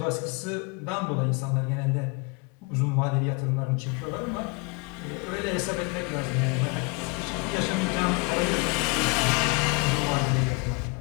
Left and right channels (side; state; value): right; quieter; 30.2 dB